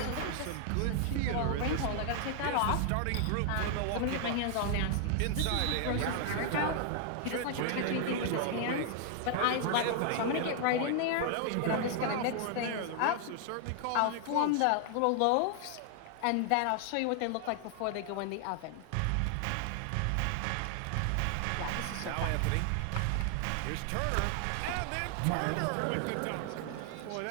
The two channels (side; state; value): both; different; correlation 0.00